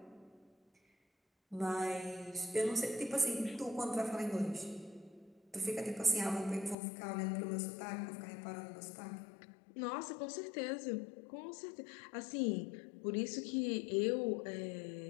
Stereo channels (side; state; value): right; drops out; at 6.8 s